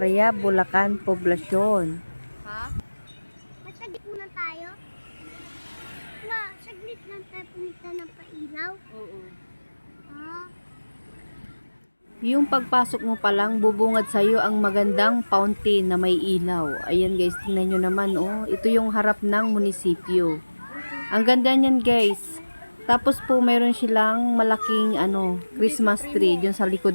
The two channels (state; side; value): inverted; both; correlation -1.00